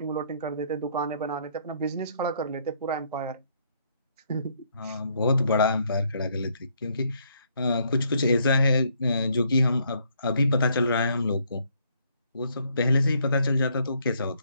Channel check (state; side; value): inverted; both; correlation -0.69